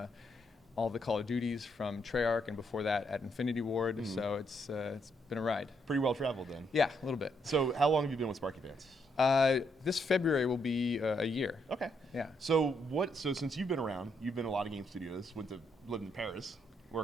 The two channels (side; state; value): both; normal; correlation 0.75